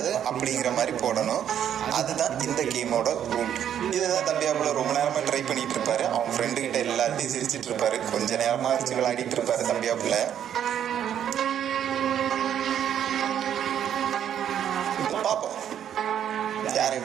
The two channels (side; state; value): left; quieter; 9.7 dB